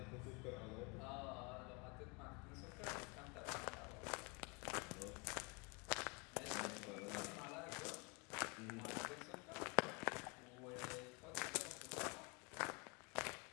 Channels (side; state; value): right; quieter; 30.4 dB